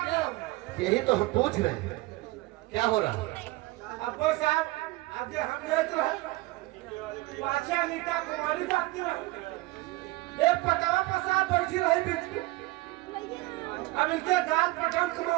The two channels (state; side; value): quieter; left; 20.7 dB